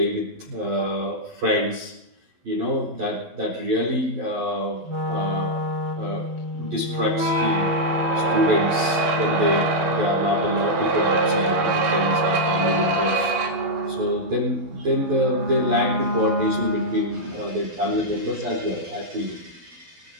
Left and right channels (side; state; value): left; late; 11 ms